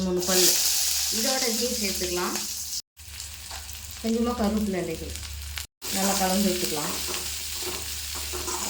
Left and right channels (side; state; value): both; identical; correlation 1.00